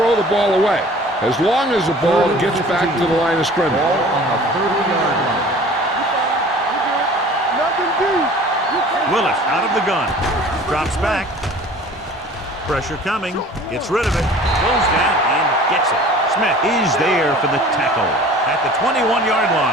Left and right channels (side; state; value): both; normal; correlation 0.46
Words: the ball away, as long as the ball gets back to the line of scrimmage. Ball on the 30-yard line. Nothing deep. Willis out of the gun. Drops back. Pressure coming. Gets rid of it. Goes down and gets it. Smith is there for the tackle at the 21-yard